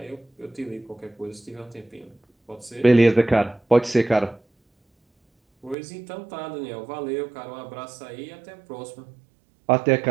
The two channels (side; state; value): left; drops out; at 5.8 s